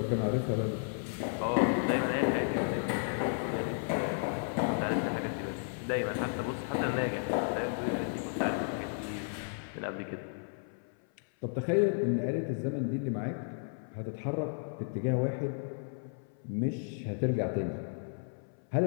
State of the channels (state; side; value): silent; right; 56 dB below the other